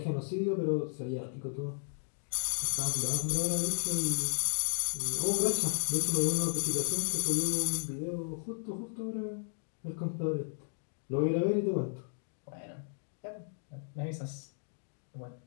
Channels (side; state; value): right; silent; digital silence